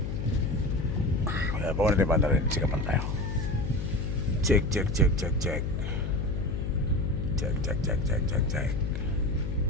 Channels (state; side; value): noise; left; hum, 2 dB below the sound